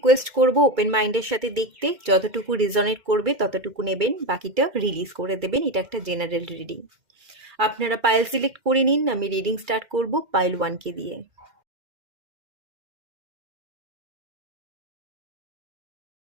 করব ওপেন মাইন্ডের সাথে দেখতে, যতটুকু রিজনেট করবে ততটুকু নেবেন, বাকিটা রিলিজ করে দেবেন। এটা একটা জেনারেল রিডিং। আপনারা পাইল সিলেক্ট করে নিন, আমি রিডিং স্টার্ট করব পাইল 1কে দিয়ে।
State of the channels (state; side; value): late; left; 2.3 ms